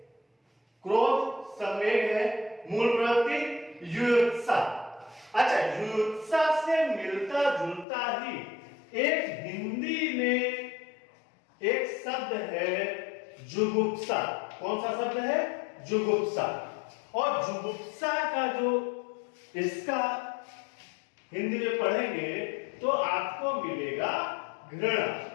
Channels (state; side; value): drops out; right; at 7.9 s